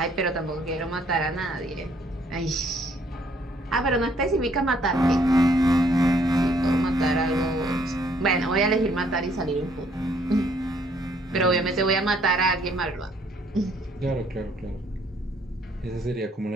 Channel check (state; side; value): normal; both; correlation 0.65